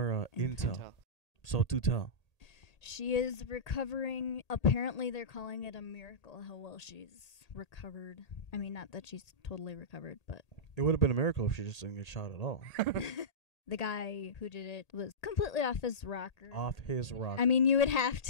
intel. So do tell. She is recovering. Apparently, they're calling it a miracle how well she's recovered. I mean, not that she's totally recovered, but It would have been a miracle if she just didn't get shot at all. the guy who did it was completely off his rocker. Off his rock. I mean, you would have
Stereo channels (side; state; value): right; late; 1.8 ms